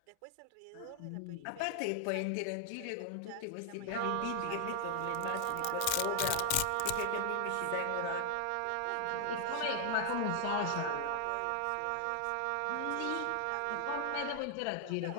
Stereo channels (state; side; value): different; both; correlation 0.00